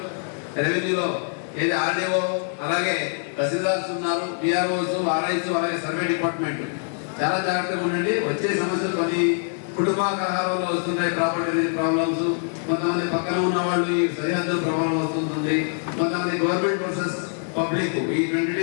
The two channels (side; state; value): right; silent; 61 dB below the other